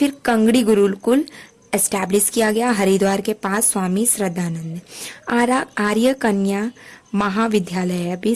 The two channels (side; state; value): both; identical; correlation 1.00